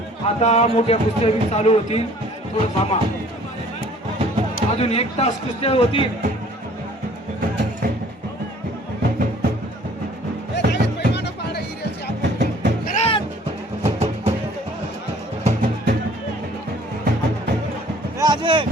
आता मोठ्या कुस्त्या बी चालू होती. थोडं थांबा. अजून 1 तास कुस्त्या होती.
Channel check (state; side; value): normal; both; correlation 0.54